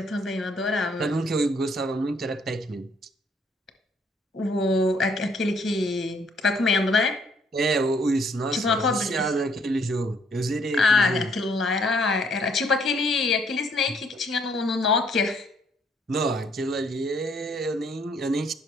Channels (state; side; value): normal; both; correlation 0.65